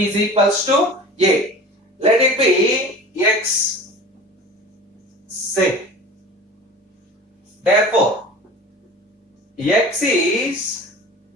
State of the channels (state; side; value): normal; both; correlation 0.38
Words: a. Let it be x, say. Therefore, x is